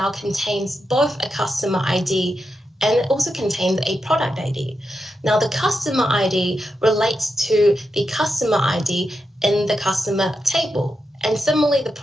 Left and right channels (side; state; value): both; normal; correlation 0.87